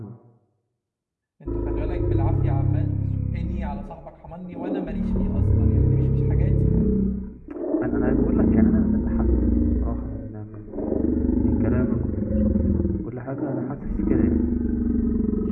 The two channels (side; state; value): both; identical; correlation 1.00